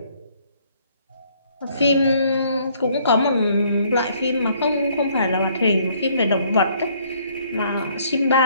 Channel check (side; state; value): both; inverted; correlation -0.64